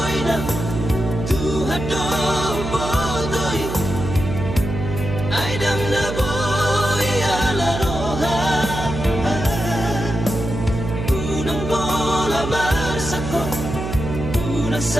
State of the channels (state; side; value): noise; right; hum, 5 dB below the sound